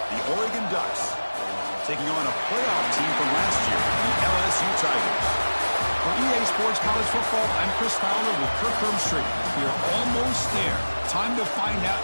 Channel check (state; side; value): inverted; both; correlation -1.00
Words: the Oregon Ducks, taking on a playoff team from last year, the LSU Tigers. For EA Sports College Football, I'm Chris Fowler with Kirk Herbstreit. We are almost there. Time to find out